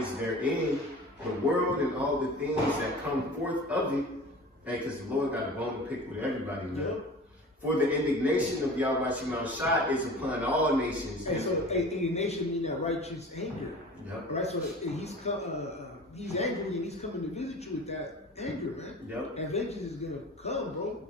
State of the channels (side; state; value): both; normal; correlation 0.39